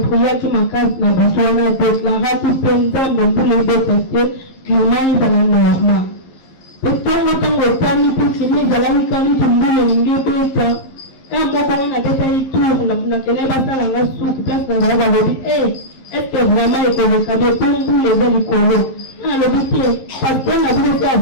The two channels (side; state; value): right; late; 11 ms